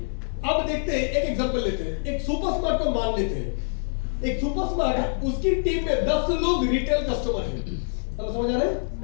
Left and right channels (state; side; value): silent; right; digital silence